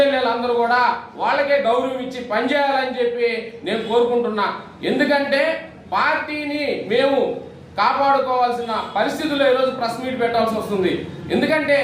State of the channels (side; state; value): both; identical; correlation 1.00